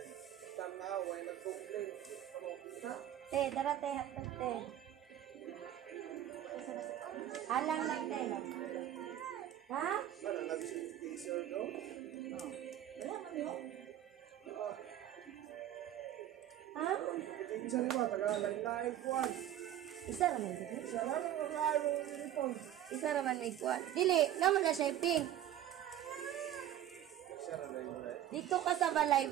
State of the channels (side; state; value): left; quieter; 11.8 dB